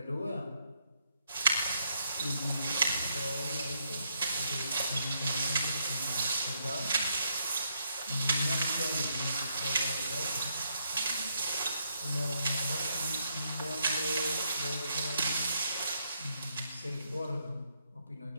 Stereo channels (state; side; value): inverted; both; correlation -0.75